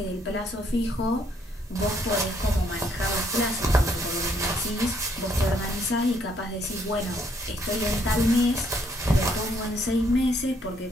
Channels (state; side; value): normal; both; correlation 0.69